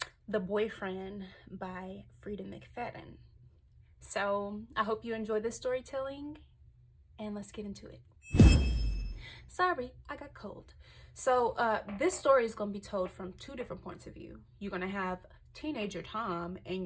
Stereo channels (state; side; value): identical; both; correlation 1.00